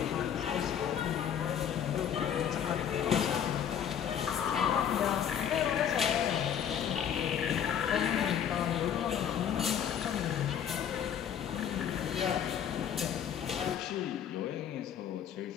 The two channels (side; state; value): right; quieter; 8.9 dB